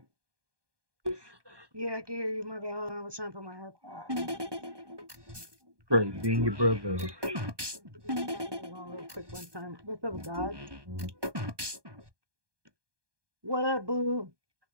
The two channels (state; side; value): late; left; 1.2 ms